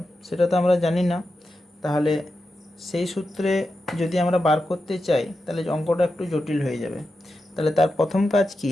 সেটা তো আমরা জানি না, তাহলে সেই সূত্রে যদি আমরা বার করতে চাই তাহলে অঙ্কটা একটু জটিল হয়ে যাবে। তাহলে তার প্রথম কাজ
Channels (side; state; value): both; normal; correlation 0.89